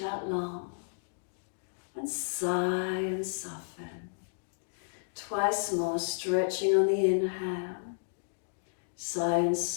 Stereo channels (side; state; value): right; silent; digital silence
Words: long. And sigh and soften. Twice more, stretching on the inhale. Sigh and